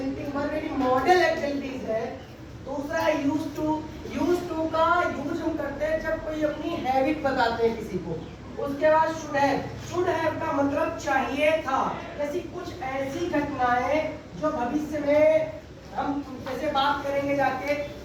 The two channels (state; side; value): identical; both; correlation 1.00